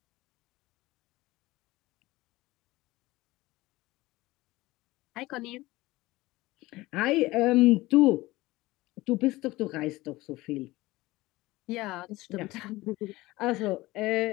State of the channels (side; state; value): right; quieter; 19.4 dB